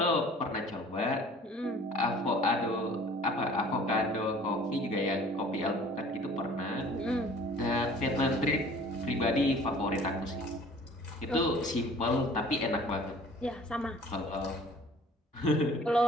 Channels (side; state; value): both; normal; correlation 0.49